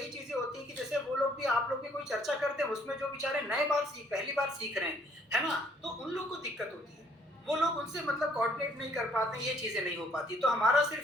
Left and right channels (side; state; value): both; normal; correlation 0.63